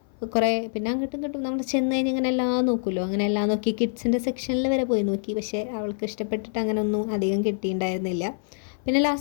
കുറേ, പിന്നെ അങ്ങോട്ടും ഇങ്ങോട്ടും നമ്മൾ ചെന്ന് കഴിഞ്ഞ് ഇങ്ങനെ എല്ലാം നോക്കുമല്ലോ, അങ്ങനെ എല്ലാം നോക്കി കിഡ്സിൻ്റെ സെക്ഷനിൽ വരെ പോയി നോക്കി. പക്ഷേ അവൾക്ക് ഇഷ്ടപ്പെട്ടിട്ട് അങ്ങനെ ഒന്നും അധികം കിട്ടിയിട്ടുണ്ടായിരുന്നില്ല. പിന്നെ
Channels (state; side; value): silent; right; 58 dB below the other